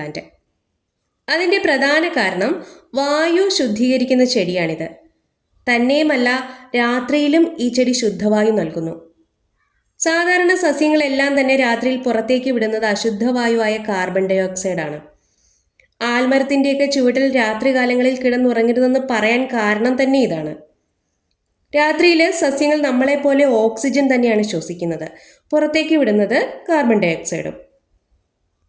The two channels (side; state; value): both; identical; correlation 1.00